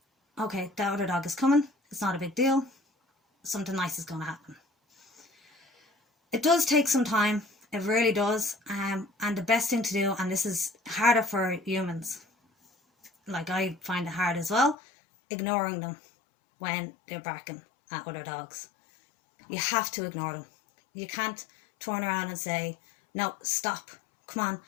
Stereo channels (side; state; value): right; drops out; at 14.8 s